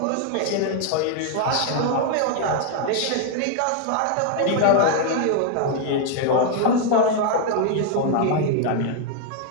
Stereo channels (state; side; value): different; both; correlation 0.00